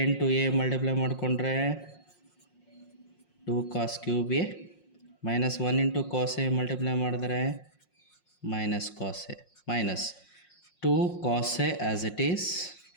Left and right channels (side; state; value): right; late; 5.6 ms